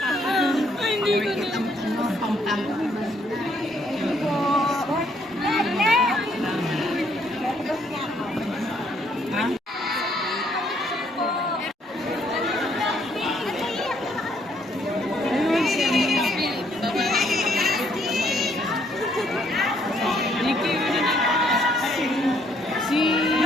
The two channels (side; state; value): both; normal; correlation 0.68